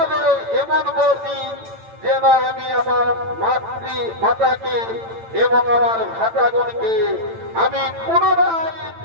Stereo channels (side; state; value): left; late; 8.9 ms